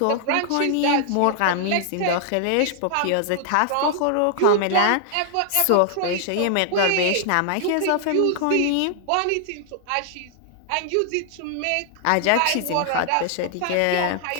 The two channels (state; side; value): different; both; correlation 0.00